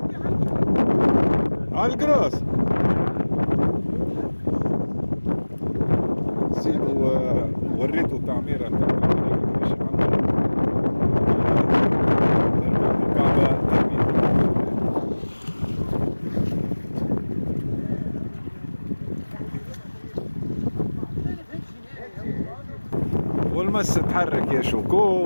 على القراص سيبو وريته التعميرة باش يعمر الكعبة والمس تحرك يا شوكو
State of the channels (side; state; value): both; inverted; correlation -1.00